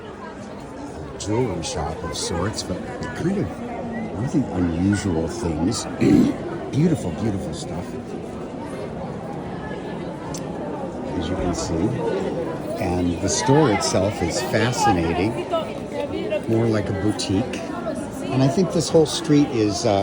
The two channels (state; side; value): identical; both; correlation 1.00